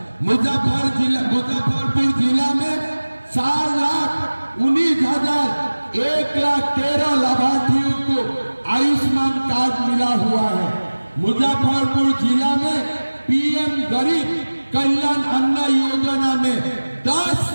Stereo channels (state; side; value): inverted; both; correlation -1.00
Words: मुजफ्फरपुर जिला में 4,19,113 लाभार्थियों को आयुष्मान कार्ड मिला हुआ है। मुजफ्फरपुर जिला में पीएम गरीब कल्याण अन्न योजना में 10